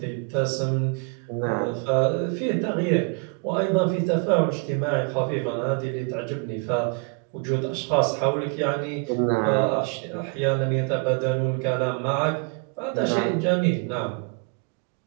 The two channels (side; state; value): left; quieter; 34.4 dB